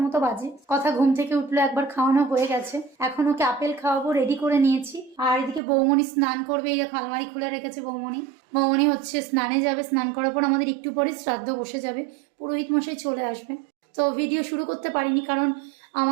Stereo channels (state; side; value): drops out; left; at 5.6 s